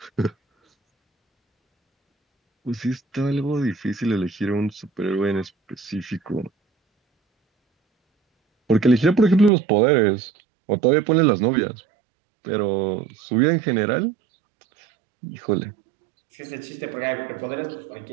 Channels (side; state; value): left; drops out; at 9.5 s